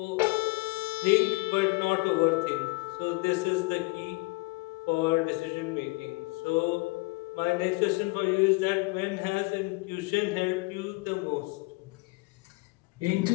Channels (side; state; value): right; quieter; 25.8 dB